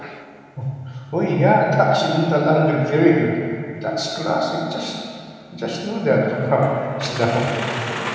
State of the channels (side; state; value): both; identical; correlation 1.00